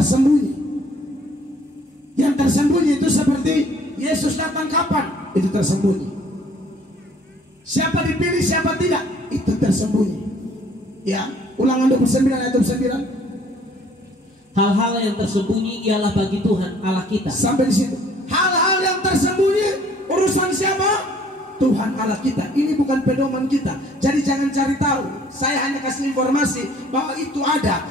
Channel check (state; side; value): normal; both; correlation 0.58